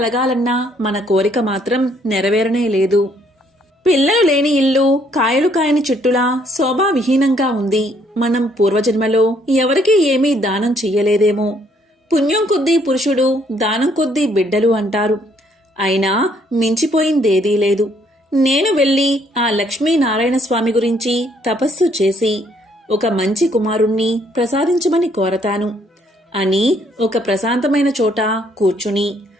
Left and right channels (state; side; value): normal; both; correlation 0.67